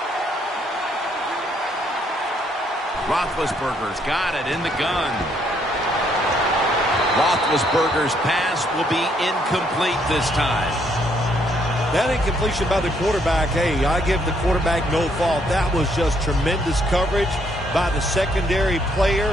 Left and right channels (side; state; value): both; normal; correlation 0.70